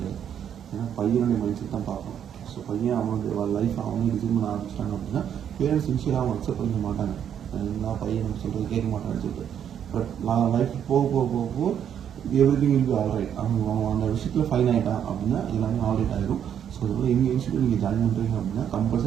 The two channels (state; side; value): quieter; left; 9.1 dB